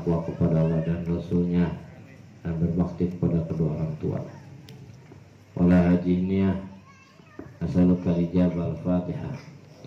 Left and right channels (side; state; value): both; identical; correlation 1.00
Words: kepada Allah dan Rasulnya, dan berbakti kepada kedua orang tua. Oleh haji niat نسألك الإجابة. الفاتحة.